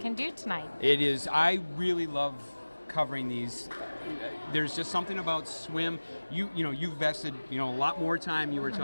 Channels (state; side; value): inverted; both; correlation -1.00